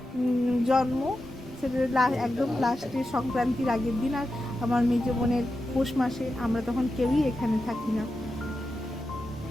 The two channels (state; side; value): noise; right; rumble, 25 dB below the sound